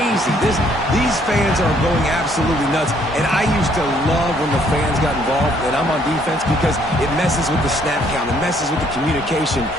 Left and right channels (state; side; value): normal; both; correlation 0.66